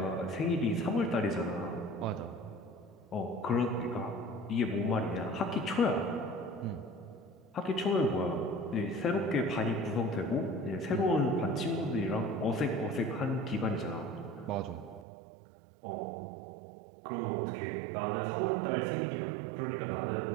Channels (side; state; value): left; drops out; at 15.1 s